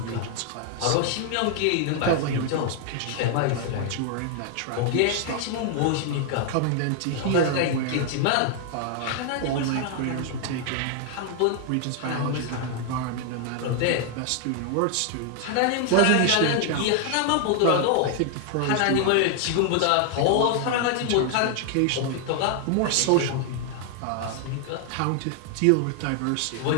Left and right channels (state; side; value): different; both; correlation 0.00